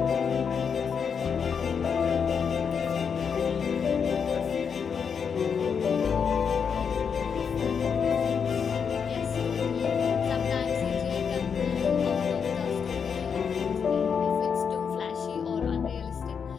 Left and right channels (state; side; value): quieter; right; 6.6 dB